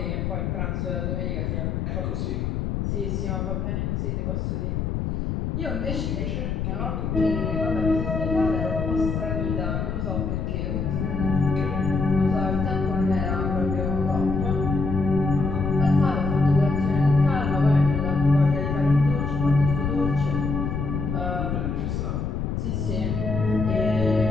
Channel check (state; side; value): noise; left; rumble, 1 dB below the sound